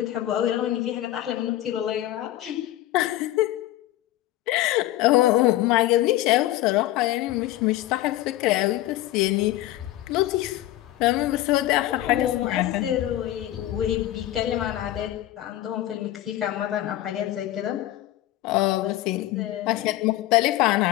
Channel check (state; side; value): quieter; right; 14.7 dB